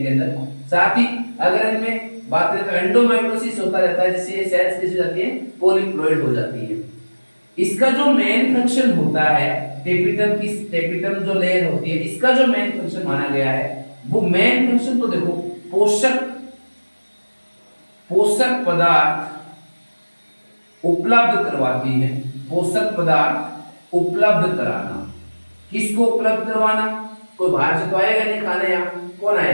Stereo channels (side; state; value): both; inverted; correlation -1.00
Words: अंदर। साथ ही अगर इनमें बात करें तो एंडोमाइटोसिस होता रहता है, जिससे ये सेल्स कैसी हो जाती हैं? पॉलीप्लॉइड हो जाती है। इसका जो मेन फंक्शन होता है टेपिटम की, टेपिटम जो लेयर होती है इसका जो मेन फंक्शन माना गया है वो मेन फंक्शन तो देखो पोषक पदार्थ उपलब्ध करवाती है, पोषक पदार्थ उपलब्ध कराना। किसको उपलब्ध करवाना? कोई बाहर से तो आएगा नहीं खाने, यहाँ कौन